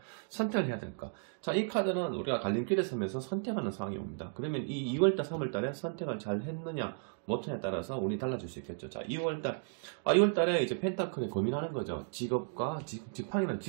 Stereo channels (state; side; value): silent; left; digital silence